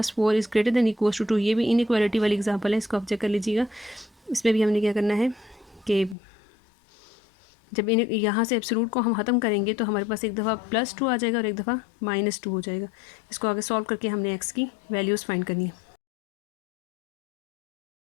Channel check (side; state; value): right; drops out; at 6.2 s